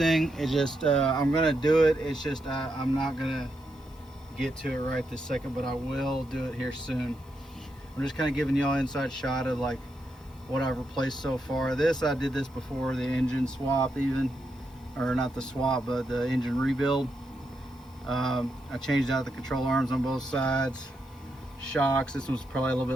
it just I'm gonna do it. It's just I'm not gonna get to it right this second, but I will do it here soon. I'm just kind of giving y'all an inside shot of like what I've replaced so far. I did this before the engine swap, even, or not the swap, but the engine rebuild. I changed out the control arms on both sides. Shocks, this one's probably a little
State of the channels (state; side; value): noise; left; hiss, 29 dB below the sound